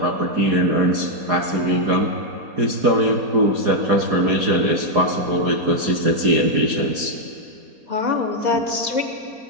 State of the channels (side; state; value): left; late; 4.2 ms